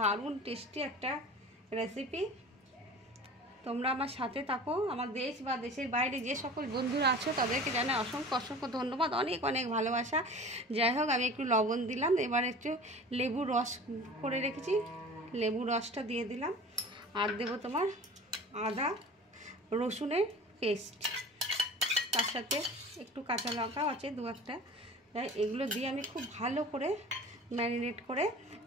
টেস্টি একটা রেসিপি। তোমরা আমার সাথে থাকো। আমার দেশ বা দেশের বাইরে যে সকল বন্ধুরা আছো তাদেরকে জানাই অসংখ্য অসংখ্য ধন্যবাদ, অনেক অনেক ভালোবাসা। যাই হোক, আমি একটু লবণ দিলাম, এবার একটু লেবুর রস করে রেখেছি, লেবুর রসটা দিয়ে দিলাম। আর দেবো তোমার আদা রসুনের পেস্ট, তার সাথে একটু কাঁচা লঙ্কাও আছে দু একটা। এগুলো দিয়ে আমি খুব ভালো করে ম্যারিনেট করে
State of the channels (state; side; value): normal; both; correlation 0.40